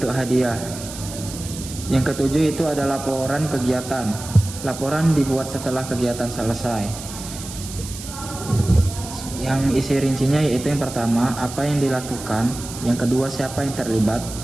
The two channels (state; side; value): noise; right; hiss, 12 dB below the sound